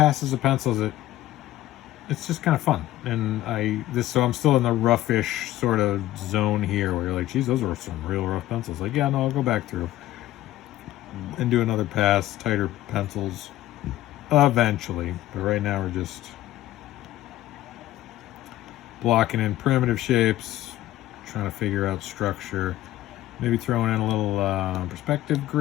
of pencils. It's just kind of fun. And so I'm still in the roughish sort of zone here where you're like, geez, those are some real rough pencils. Like, yeah, no, I'll go back through and do another pass, tighter pencils, eventually. But right now we're just blocking in primitive shapes, trying to figure out structure. Maybe throwing in a little perspective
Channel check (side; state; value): right; quieter; 14.9 dB